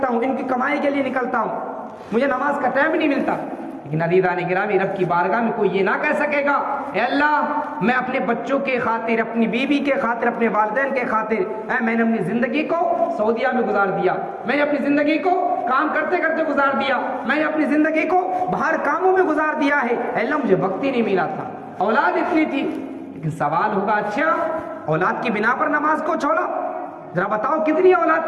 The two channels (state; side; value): identical; both; correlation 1.00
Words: ہوں، ان کی کمائی کے لیے نکلتا ہوں، مجھے نماز کا ٹائم نہیں ملتا. لیکن عزیزان گرامی، رب کی بارگاہ میں کوئی یہ نہ کہہ سکے گا اے اللہ میں اپنے بچوں کے خاطر، اپنی بیوی کے خاطر، اپنے والدین کے خاطر میں نے اپنی زندگی کو سعودیہ میں گزار دیا، میں نے اپنی زندگی کو کام کرتے کرتے گزار دیا، میں نے اپنی زندگی کو باہر کاموں میں گزار دیا ہے، اے اللہ مجھے وقت ہی نہیں ملا تھا، اولاد اتنی تھی. لیکن سوال ہوگا اچھا اولاد کی بنا پر نماز کو چھوڑا؟ ذرا بتاؤ کتنی